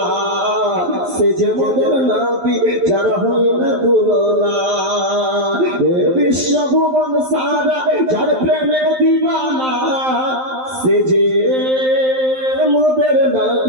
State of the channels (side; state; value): left; late; 11 ms